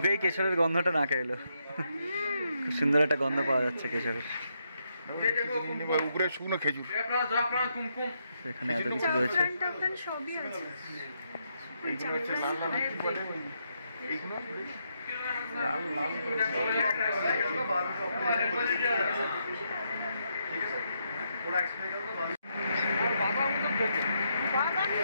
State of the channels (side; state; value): both; inverted; correlation -0.79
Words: কেশরের গন্ধটা নাকে এলো। খুব সুন্দর একটা গন্ধ পাওয়া যাচ্ছে কেশরের। এখানে এত কিছু রয়েছে।